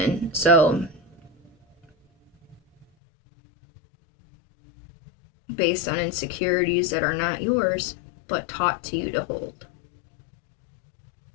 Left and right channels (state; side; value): drops out; right; at 2.9 s